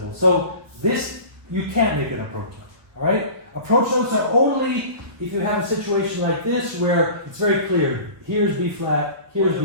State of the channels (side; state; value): left; late; 1.3 ms